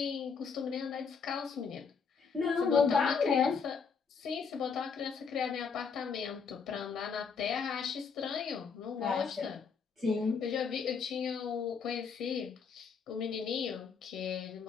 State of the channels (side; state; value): right; quieter; 5.7 dB